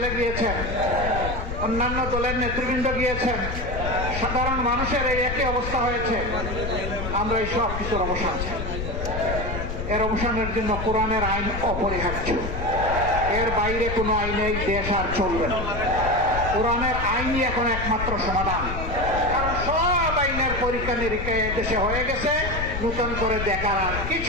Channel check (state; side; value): noise; left; rumble, 5 dB below the sound